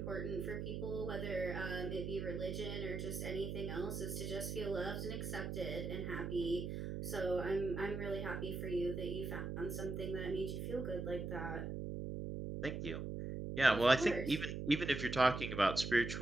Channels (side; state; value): right; noise; hum, 4 dB below the sound